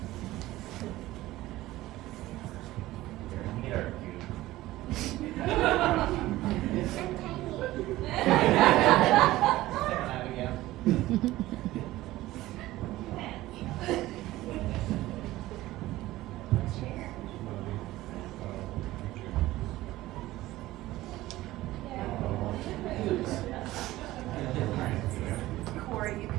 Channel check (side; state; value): left; quieter; 16.7 dB